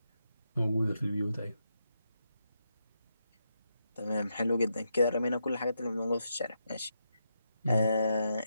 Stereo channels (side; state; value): both; inverted; correlation -0.83